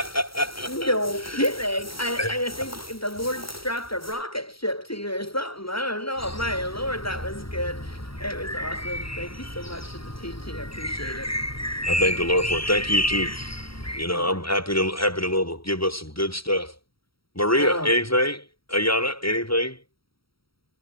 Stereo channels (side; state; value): right; late; 0.75 ms